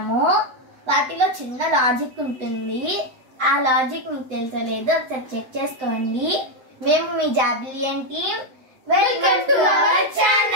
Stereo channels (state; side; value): late; left; 7.9 ms